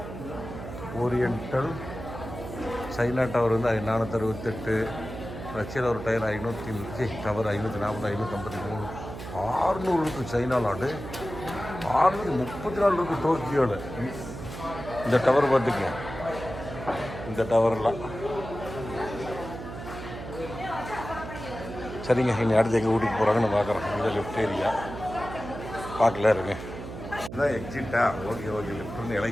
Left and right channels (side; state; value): right; noise; hum, 10 dB below the sound